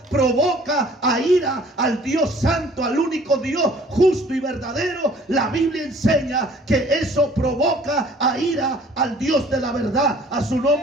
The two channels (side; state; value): both; normal; correlation 0.54